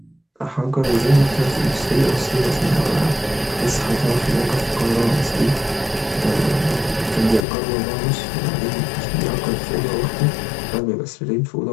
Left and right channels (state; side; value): drops out; right; at 7.4 s